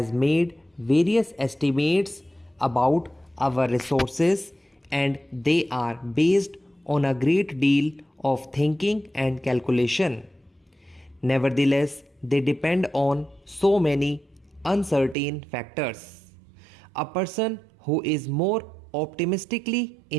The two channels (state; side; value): drops out; left; at 15.2 s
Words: made various estimates about our resources, and they are based on a great deal of thinking and calculation. Nevertheless, they depend on so many uncertain factors. A person who is more optimistically